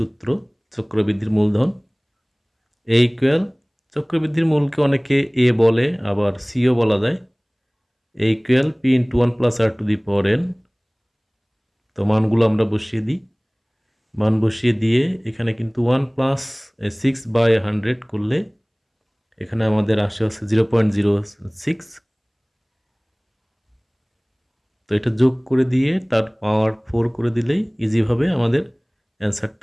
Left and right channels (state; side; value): identical; both; correlation 1.00